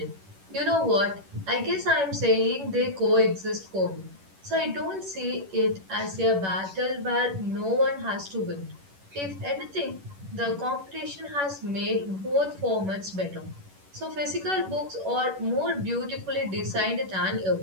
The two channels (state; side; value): late; left; 11 ms